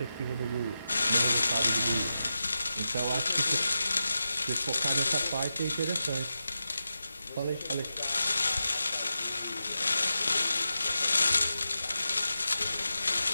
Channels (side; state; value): both; inverted; correlation -0.90